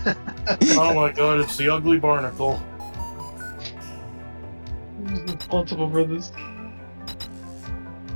Oh my god, it's the ugly barnacle. Multiple brothers.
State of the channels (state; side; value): inverted; both; correlation -1.00